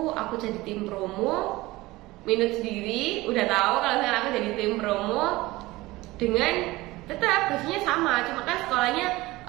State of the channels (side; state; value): left; quieter; 19.7 dB